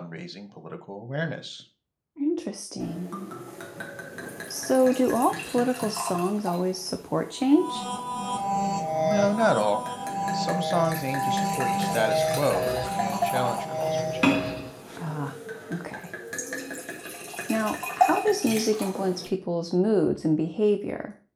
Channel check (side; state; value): both; identical; correlation 1.00